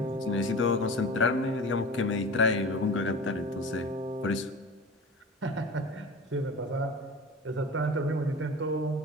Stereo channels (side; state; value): both; normal; correlation 0.35